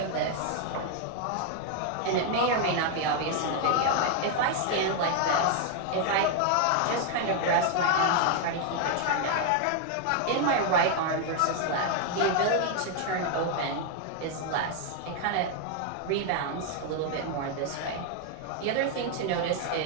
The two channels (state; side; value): different; both; correlation 0.00